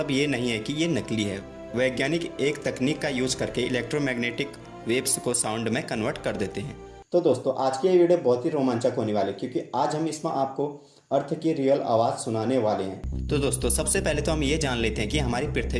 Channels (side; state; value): both; identical; correlation 1.00